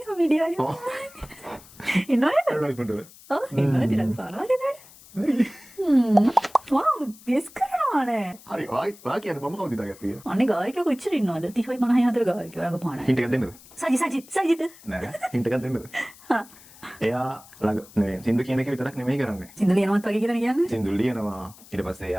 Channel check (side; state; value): left; noise; hiss, 22 dB below the sound